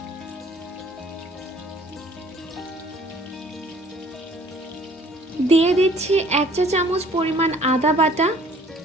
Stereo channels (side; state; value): both; normal; correlation 0.56